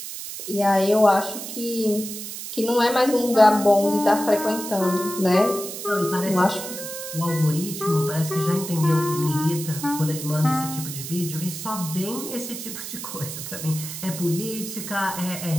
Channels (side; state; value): right; noise; hiss, 8 dB below the sound